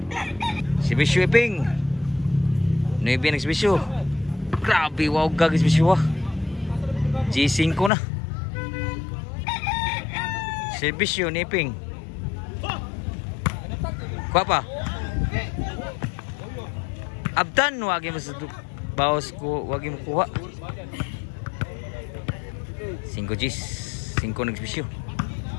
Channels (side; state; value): right; drops out; at 7.9 s